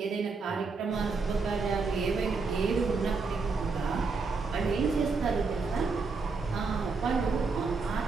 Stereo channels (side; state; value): left; quieter; 4.4 dB